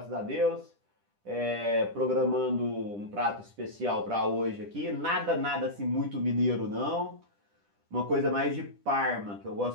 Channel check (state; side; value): late; left; 10 ms